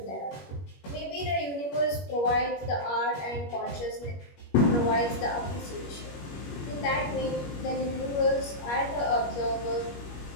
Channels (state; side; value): late; right; 21 ms